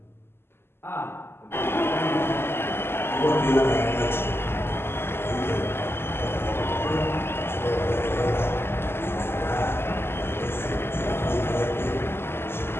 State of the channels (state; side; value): late; right; 0.12 ms